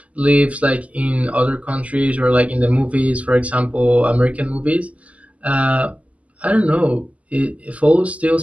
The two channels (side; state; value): left; late; 0.069 ms